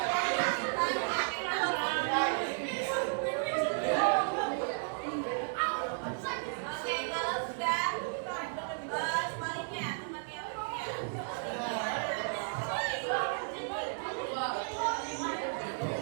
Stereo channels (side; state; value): left; silent; digital silence